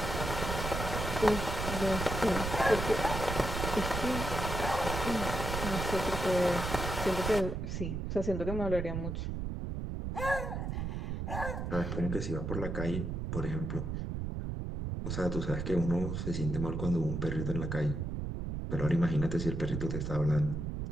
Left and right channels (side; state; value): right; noise; rumble, 3 dB below the sound